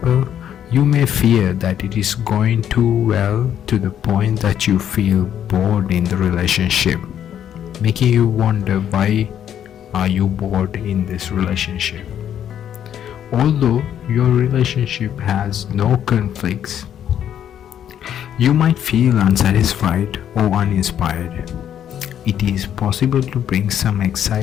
you may fear that it is going too well to the point that you feel bored in the relationship, making you wonder why are you bored in this relationship. Although your relationship has no conflicts, you might feel unsatisfied or uninspired. It is possible to bring some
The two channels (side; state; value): right; quieter; 9.8 dB